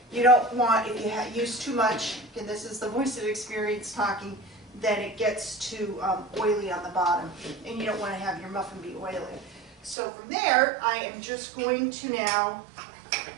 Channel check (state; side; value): drops out; left; at 10.0 s